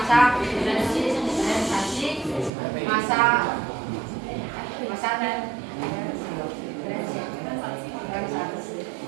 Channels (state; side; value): drops out; left; at 2.5 s